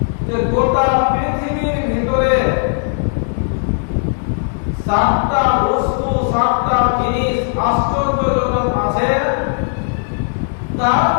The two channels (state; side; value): silent; right; 58 dB below the other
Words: যে গোটা পৃথিবীর ভিতরে 7টা বস্তু, 7টা জিনিস আশ্চর্যজনক আছে। তার